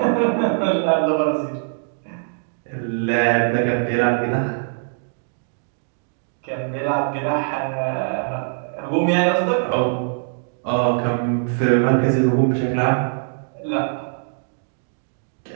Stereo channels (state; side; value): silent; left; digital silence